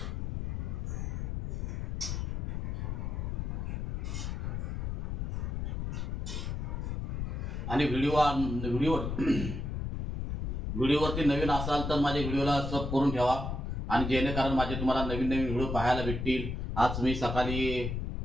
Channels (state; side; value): noise; left; rumble, 3 dB below the sound